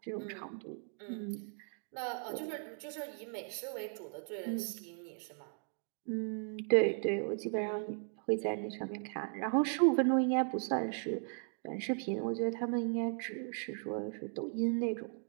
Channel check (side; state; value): left; silent; 53 dB below the other